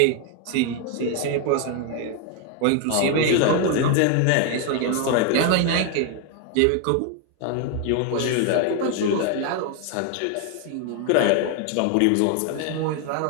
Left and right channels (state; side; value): different; both; correlation 0.01